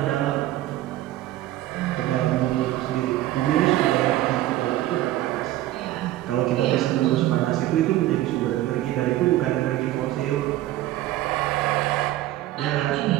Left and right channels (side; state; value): left; quieter; 14.9 dB